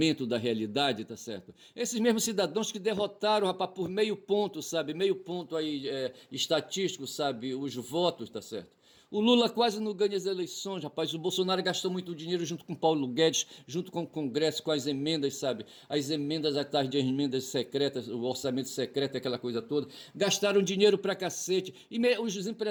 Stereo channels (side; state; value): both; identical; correlation 1.00